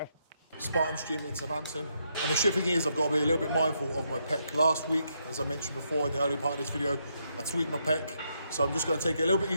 Spartans Gym in Southampton. And the shit thing is, I've got to be a little bit mindful of my pec. Last week, as I mentioned before in the early part of this video, I tweaked my pec. So I'm just going to take it a little bit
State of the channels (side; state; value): both; inverted; correlation -0.78